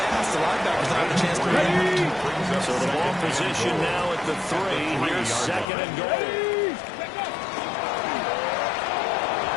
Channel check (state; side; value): drops out; right; at 5.7 s